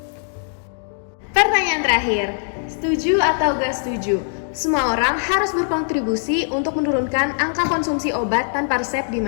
Pertanyaan terakhir, setuju atau gak setuju? Semua orang harus berkontribusi untuk menurunkan angka konsumsi obat tanpa resep di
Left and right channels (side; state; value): right; silent; digital silence